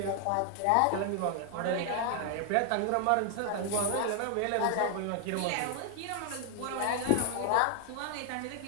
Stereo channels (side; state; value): both; different; correlation 0.00